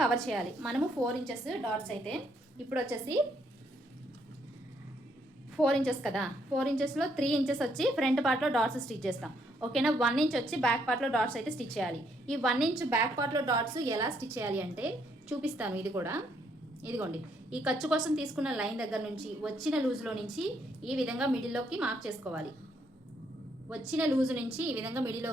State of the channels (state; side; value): normal; both; correlation 0.72